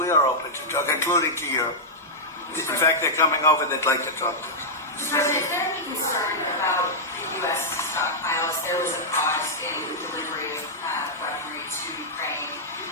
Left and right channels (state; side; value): normal; both; correlation -0.07